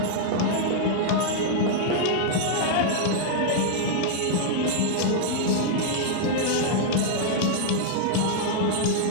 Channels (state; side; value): different; both; correlation -0.01